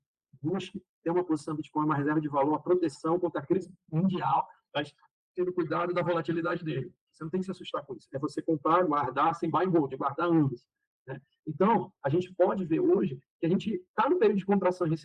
busque ter uma posição em Bitcoin, uma reserva de valor, a proteção contra a crise mundial, mas tendo cuidado da volatilidade dele. Você não tem que se assustar com isso. É você comprar, guardar, sem buy and hold, guardar anos. Né? Então, a gente pode ver hoje que a gente está no período de contração e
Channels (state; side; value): identical; both; correlation 1.00